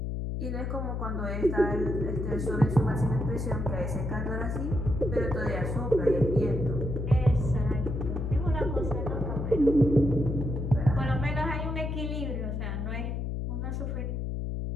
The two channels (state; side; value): noise; left; hum, 2 dB below the sound